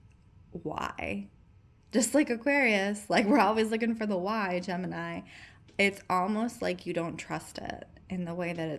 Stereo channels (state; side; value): identical; both; correlation 1.00